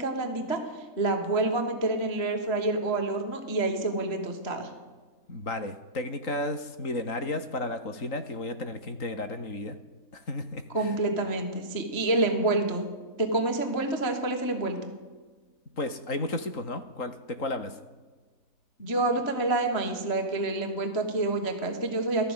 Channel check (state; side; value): late; right; 3.8 ms